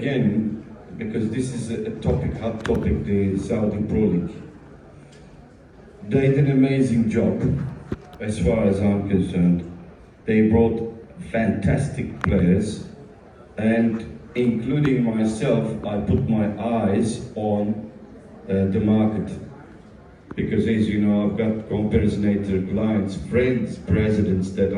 because this is a hot topic, the Saudi Pro League. They did an amazing job, as far as I'm concerned. They brought fantastic players, and including myself, I put my eyes on the market. Because as you know, I've got Comparisonator clients, friends, presidents that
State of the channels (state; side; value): identical; both; correlation 1.00